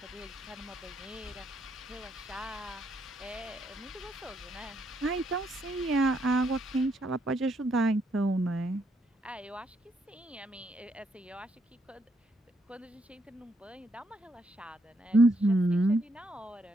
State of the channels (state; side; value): normal; both; correlation 0.76